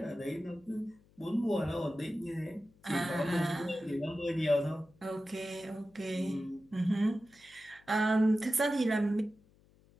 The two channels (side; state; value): left; noise; hum, 30 dB below the sound